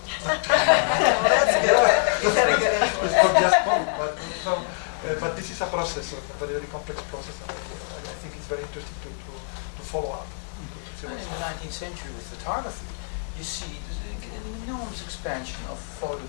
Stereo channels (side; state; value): right; silent; digital silence